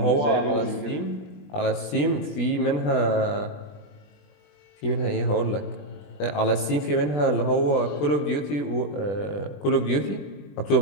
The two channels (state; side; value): late; right; 20 ms